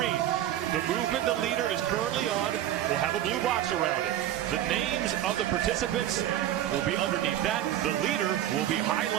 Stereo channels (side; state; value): left; quieter; 12.1 dB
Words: the movement the leader is currently on will have a blue box around it. The names of the participants will be underneath that. The leader will be